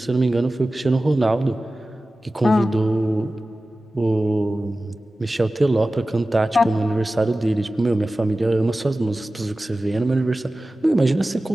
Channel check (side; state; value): both; normal; correlation 0.96